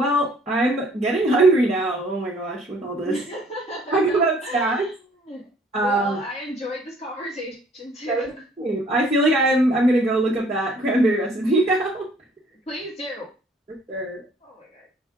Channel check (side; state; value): both; normal; correlation 0.59